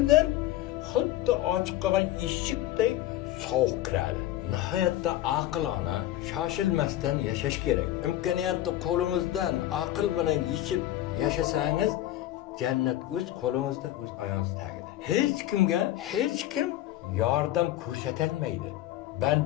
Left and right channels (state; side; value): quieter; right; 14.0 dB